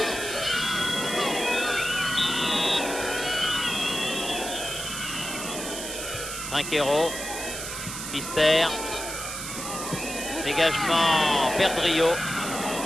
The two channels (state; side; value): noise; right; hiss, 6 dB below the sound